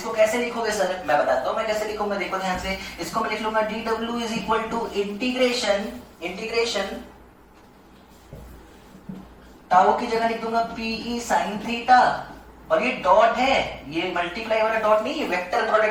कैसे लिखोगे सर, मैं बताता हूं मैं कैसे लिखूंगा, देखो ध्यान से, इसको मैं लिख लूंगा d W is equal to integration, integration tau की जगह लिख दूंगा पीई साइन थीटा, और ये डॉट है, ये मल्टीप्लाई वाला डॉट नहीं, ये वेक्टर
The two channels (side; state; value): both; identical; correlation 1.00